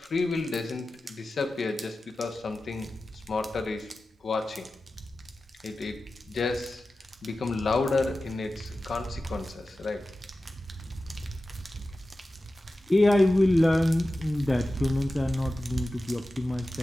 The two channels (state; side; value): normal; both; correlation 0.94